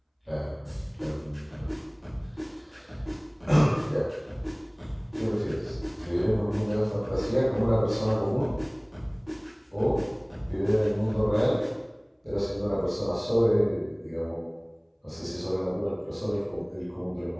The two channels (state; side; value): identical; both; correlation 1.00